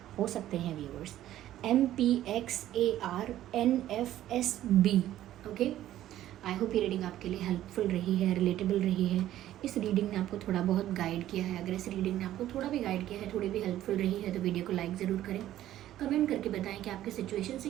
हो सकते हैं viewers. MPXARNFSB। Okay, I hope ये रीडिंग आपके लिए हेल्पफुल रही है, रिलेटेबल रही है। इस रीडिंग ने आपको थोड़ा बहुत गाइड किया है। अगर इस रीडिंग ने आपको थोड़ा भी गाइड किया है, थोड़ी भी हेल्पफुल रही है, तो वीडियो को लाइक ज़रूर करें, कमेंट करके बताएं कि आपके सिचुएशन से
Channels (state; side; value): quieter; left; 13.1 dB